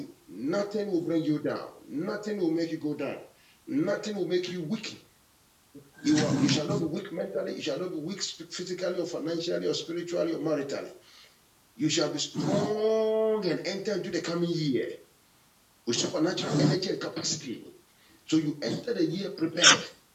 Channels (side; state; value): both; identical; correlation 1.00